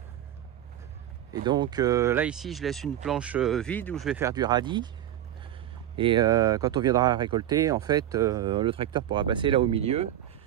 Et donc là ici je laisse une planche vide où je vais faire du radis. Et quand on viendra récolter, en fait le tracteur pourra passer là au milieu.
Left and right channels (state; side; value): quieter; left; 11.9 dB